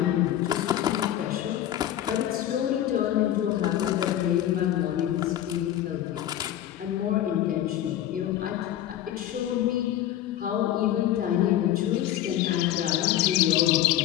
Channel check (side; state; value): right; quieter; 12.2 dB